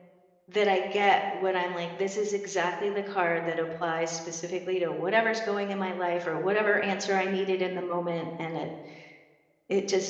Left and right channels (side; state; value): both; identical; correlation 1.00